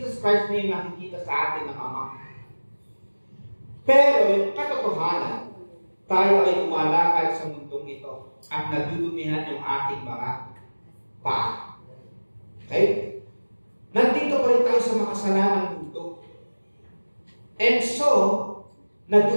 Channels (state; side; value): inverted; both; correlation -1.00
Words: Christ na yung nakikita sa atin ng Ama. Pero yung katotohanan, tayo ay tumalakad sa mundong ito at nadudumihan yung ating mga paa. Okay? Nandito pa rin tayo sa makasalanang mundo. And so,